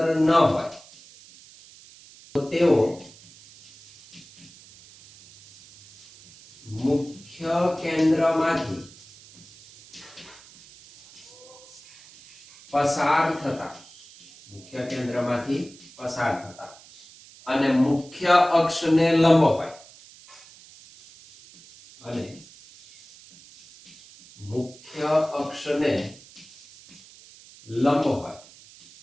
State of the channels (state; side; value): noise; right; hiss, 23 dB below the sound